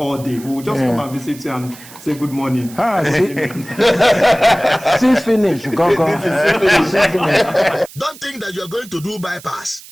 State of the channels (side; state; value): right; noise; hiss, 19 dB below the sound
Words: day. We will just come and visit you and say good morning. Since finish, go. Don't think that you're going to do bypass.